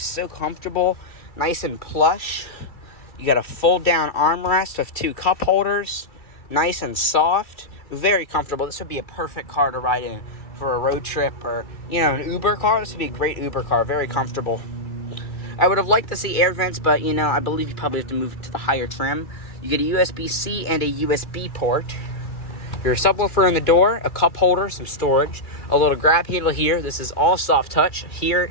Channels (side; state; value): right; late; 2.3 ms